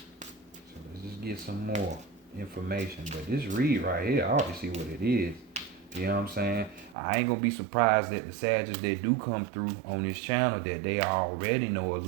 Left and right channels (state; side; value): drops out; left; at 7.0 s